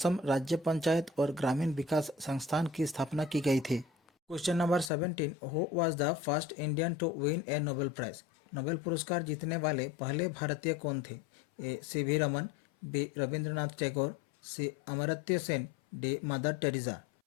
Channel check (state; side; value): drops out; right; at 4.9 s